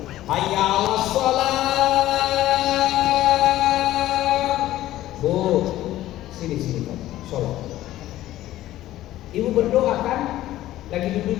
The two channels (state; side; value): quieter; right; 14.6 dB